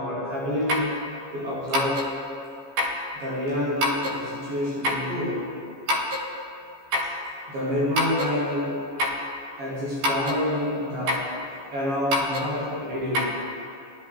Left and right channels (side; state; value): left; late; 15 ms